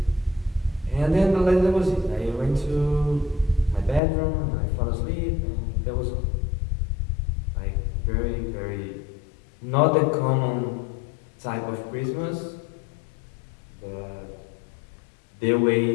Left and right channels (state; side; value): drops out; right; at 4.0 s